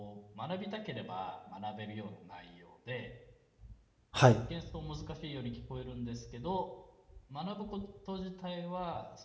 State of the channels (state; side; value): identical; both; correlation 1.00